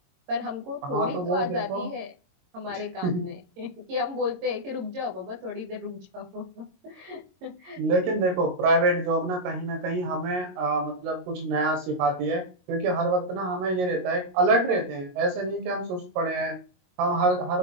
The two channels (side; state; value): left; late; 22 ms